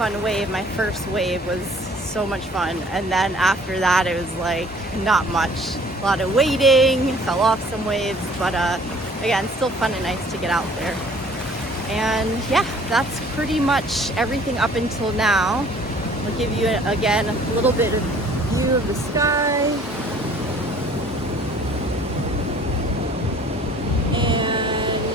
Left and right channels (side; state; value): both; normal; correlation 0.54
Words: wave. My first wave was so much fun, and then after that it was like not much. A lot of waiting, fell off some waves, but again, still fun and nice to get out there. And yeah, that's pretty much everything up until now. I'll give you again a little bit of view of the sky. And